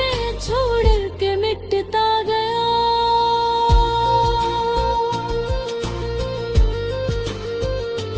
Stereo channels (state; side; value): identical; both; correlation 1.00